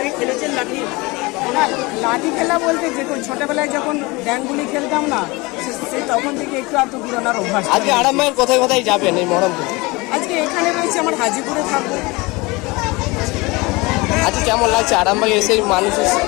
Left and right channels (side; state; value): right; quieter; 24.2 dB